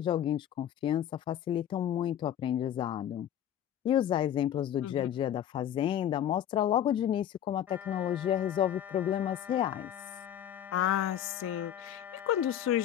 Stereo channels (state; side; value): quieter; right; 10.6 dB